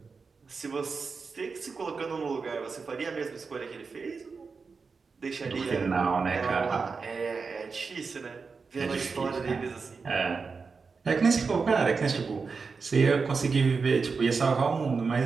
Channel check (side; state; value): left; quieter; 4.8 dB